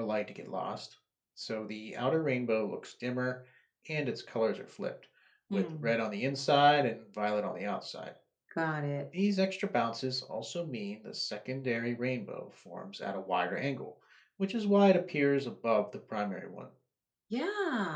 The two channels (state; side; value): identical; both; correlation 1.00